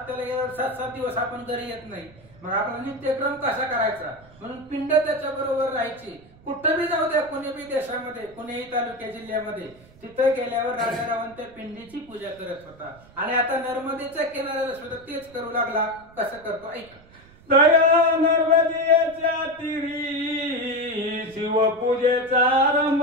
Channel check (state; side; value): noise; right; rumble, 25 dB below the sound